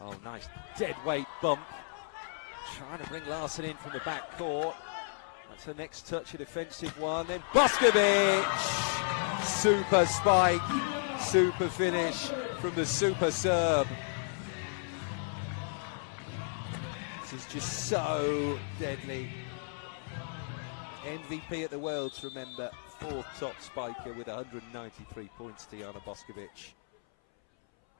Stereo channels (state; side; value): silent; right; 56 dB below the other